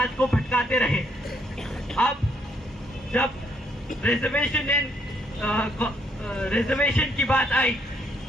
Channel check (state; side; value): normal; both; correlation 0.72